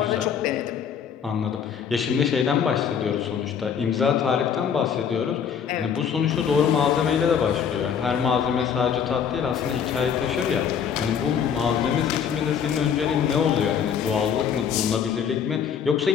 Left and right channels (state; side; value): quieter; right; 7.6 dB